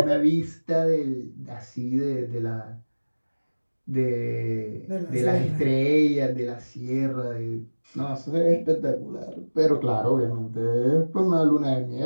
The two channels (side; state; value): both; inverted; correlation -1.00